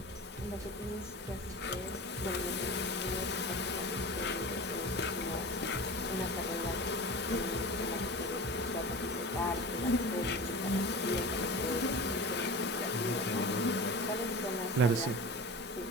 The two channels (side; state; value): both; normal; correlation 0.32